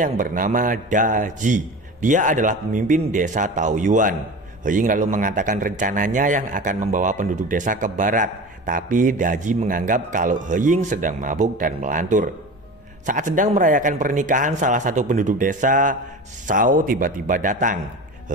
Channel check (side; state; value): both; normal; correlation 0.33